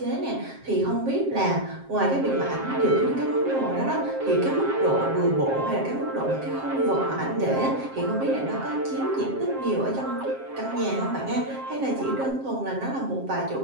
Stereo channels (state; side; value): late; left; 7.5 ms